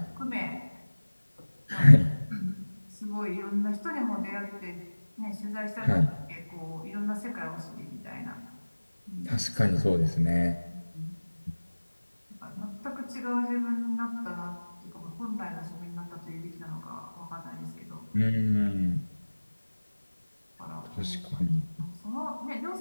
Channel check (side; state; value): both; inverted; correlation -1.00